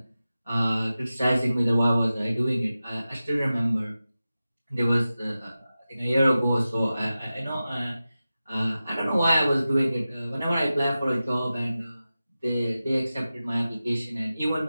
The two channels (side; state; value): both; inverted; correlation -0.94